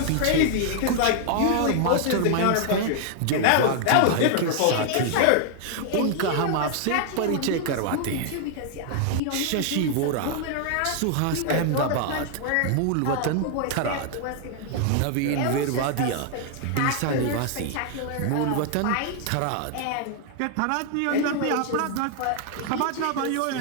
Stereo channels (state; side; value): different; both; correlation 0.00